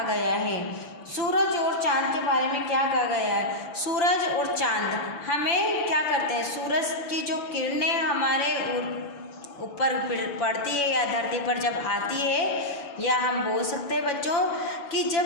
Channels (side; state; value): right; late; 7.0 ms